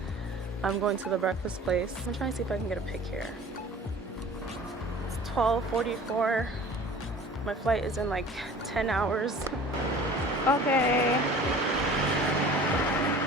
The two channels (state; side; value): normal; both; correlation 0.44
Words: I'm going to the breakfast place. I'm trying to see if I can get a pic here. It's 12:44. My flight is in like 10 hours. Okay.